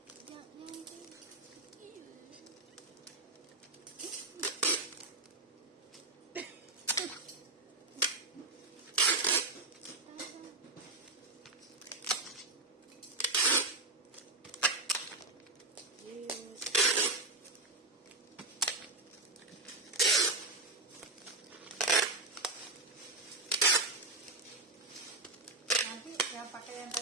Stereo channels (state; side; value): quieter; left; 3.0 dB